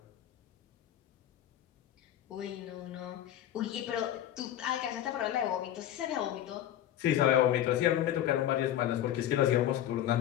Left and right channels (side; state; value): right; quieter; 11.8 dB